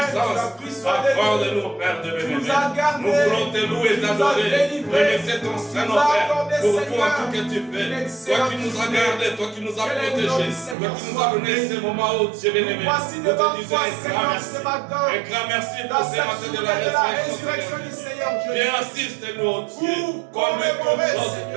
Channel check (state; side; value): drops out; left; at 10.8 s